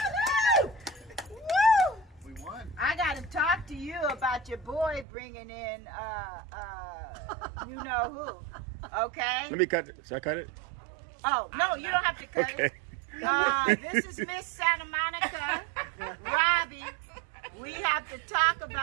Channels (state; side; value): drops out; left; at 5.1 s